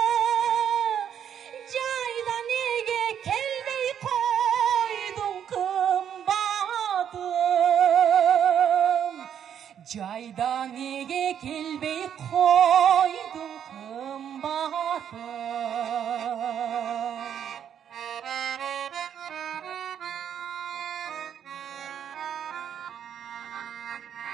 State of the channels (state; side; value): quieter; left; 9.0 dB